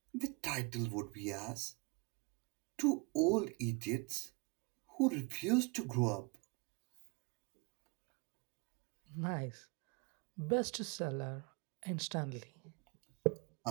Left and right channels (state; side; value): quieter; left; 30.0 dB